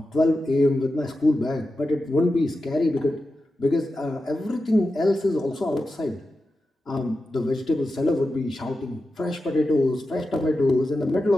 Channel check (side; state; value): both; normal; correlation 0.91